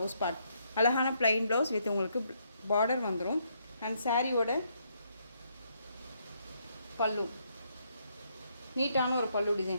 பார்ட். அழகான ப்ளைன் ப்ளவுஸ் வித் உங்களுக்கு பார்டர் வந்துடும். அண்ட் சாரியோட பல்லு நீட்டான ஒரு பல்லு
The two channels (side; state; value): both; inverted; correlation -0.74